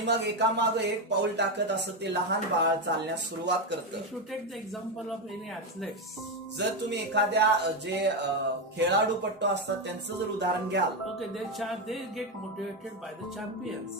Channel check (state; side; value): normal; both; correlation 0.10